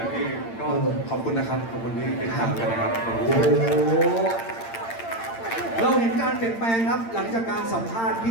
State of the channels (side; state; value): right; late; 8.8 ms